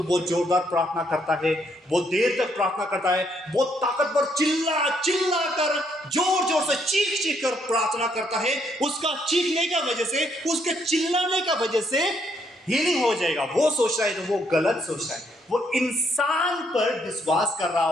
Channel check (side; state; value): both; normal; correlation 0.72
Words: बहुत जोरदार प्रार्थना करता है, बहुत देर तक प्रार्थना करता है, बहुत ताकतवर चिल्ला कर जोर से चीख कर प्रार्थना करता है, उसका चीखने का वजह से, उसके चिल्लाने का वजह से हीलिंग हो जाएगा, वो सोच रहा है तो वो गलत सोच रहा है। वो इंसान पर विश्वास कर रहा